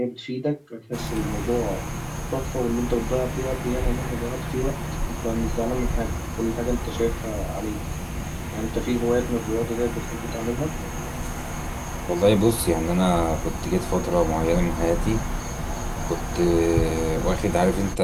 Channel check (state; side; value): identical; both; correlation 1.00